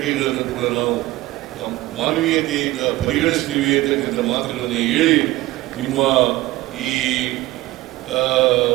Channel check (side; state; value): left; quieter; 17.8 dB